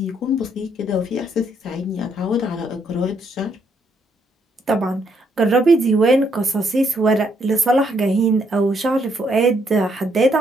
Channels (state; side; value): normal; both; correlation 0.73